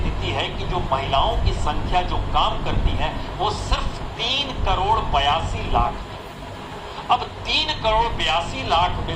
है कि जो महिलाओं की संख्या जो काम करती है वो सिर्फ 3 करोड़ 82 लाख है। अब 3 करोड़ 82 लाख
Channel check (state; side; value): identical; both; correlation 1.00